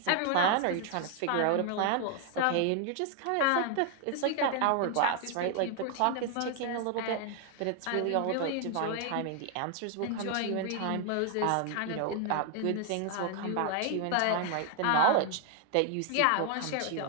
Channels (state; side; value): different; both; correlation 0.00